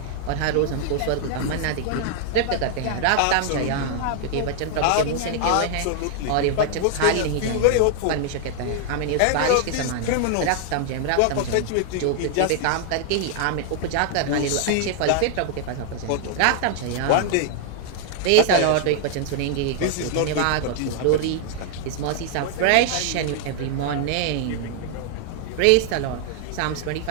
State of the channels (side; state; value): both; different; correlation 0.00